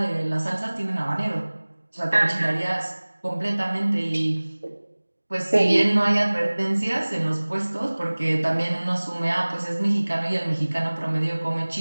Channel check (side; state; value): both; inverted; correlation -1.00